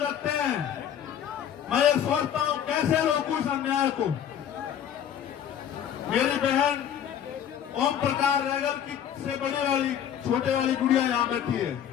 हैं, मैं ये सोचता हूं कैसे रोकूं इस अन्याय को। मेरी बहन ओम प्रकाश रैगर की से बड़ी वाली छोटे वाली गुड़िया यहां बैठी है।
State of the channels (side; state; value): right; quieter; 9.5 dB